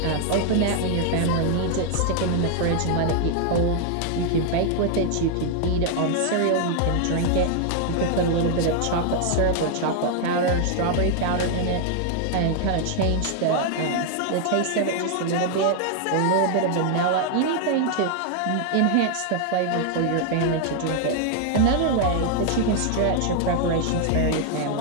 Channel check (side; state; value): both; different; correlation 0.00